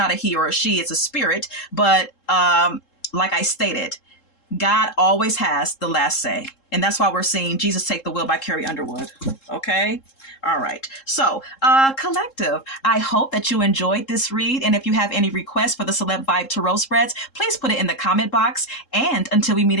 a he or a she, it's a spirit. But like I stated, God always has the last say. And that's why we're seeing Jesus Take the Wheel by Carrie Underwood. Okay? All right. So, collective, I hope that you enjoyed this read. And if you have any requests for the Celeb Vibe Tarot spreads, please put it in the comment box. And until we meet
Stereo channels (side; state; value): right; late; 3.7 ms